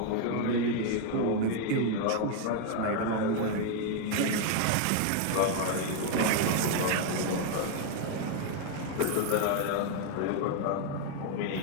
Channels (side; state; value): both; different; correlation 0.01